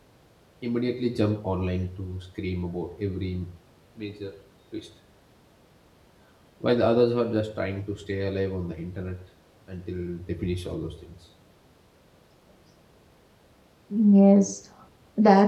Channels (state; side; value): identical; both; correlation 1.00